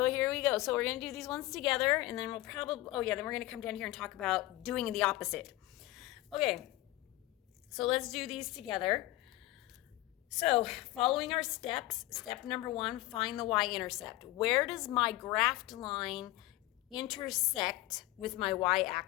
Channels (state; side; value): quieter; right; 17.8 dB